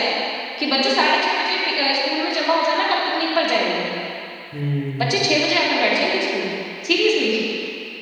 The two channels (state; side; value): identical; both; correlation 1.00